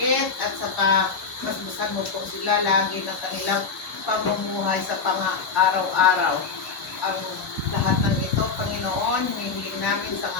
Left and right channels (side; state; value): right; quieter; 5.1 dB